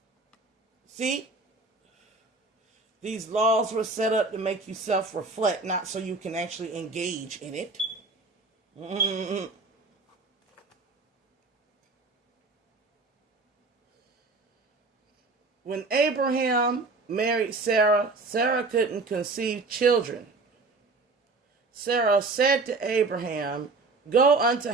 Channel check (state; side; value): quieter; left; 3.7 dB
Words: See? These laws were set up to make you self-reflect, not so you can actually engage in it. When Abraham married Sarah, Sarah couldn't conceive children. Sarah said to Abraham, "Go unto